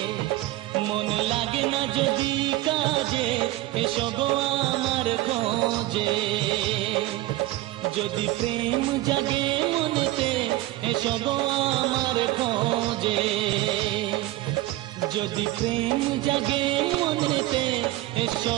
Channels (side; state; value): left; quieter; 16.9 dB